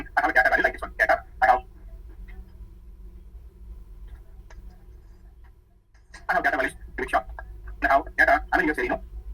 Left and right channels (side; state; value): both; identical; correlation 1.00